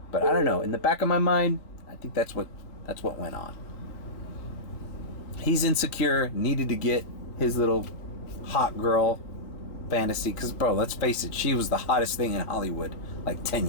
But I don't know. In the back of my mind, I think that's what went on. He's insecure, needed to get his little hot girl fantasy. Because, bro, let's face it, she was the hottest thing in Hollywood like 10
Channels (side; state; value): right; late; 4.0 ms